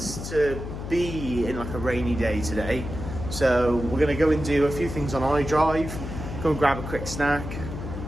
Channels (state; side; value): noise; left; hum, 7 dB below the sound